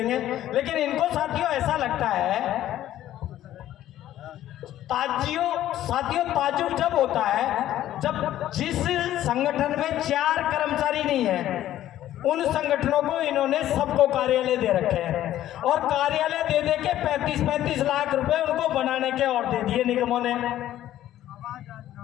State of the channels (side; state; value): right; quieter; 12.9 dB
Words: लेकिन इनको साथियों ऐसा लगता है, साथियों ताज्जुब जब होता है जब जिस संगठन में 4 कर्मचारी नहीं है उन संगठनों को इन्होंने सबको कार्यालय दे रखे हैं और कार्यालय दे दे के 35-35 लाख रुपए उनको बनाने के और दे दिए निगमों ने।